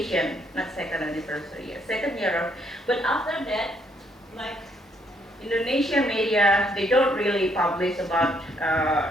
not second anniversary year, second year of, but after that, like Indonesian media, they don't really publish about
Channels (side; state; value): both; normal; correlation 0.71